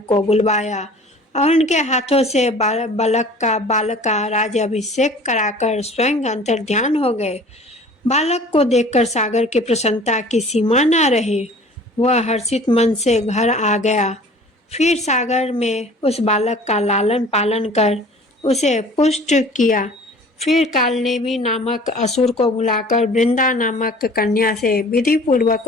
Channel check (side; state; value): both; normal; correlation 0.47